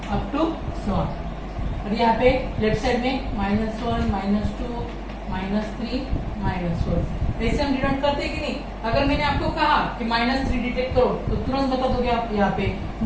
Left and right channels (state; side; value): identical; both; correlation 1.00